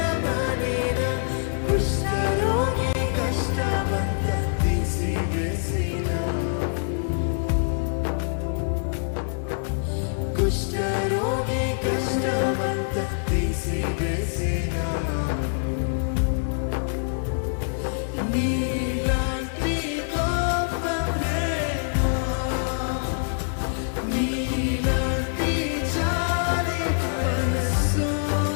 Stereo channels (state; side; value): silent; right; digital silence